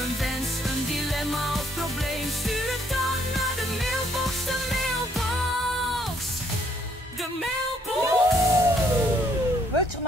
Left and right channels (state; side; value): normal; both; correlation 0.68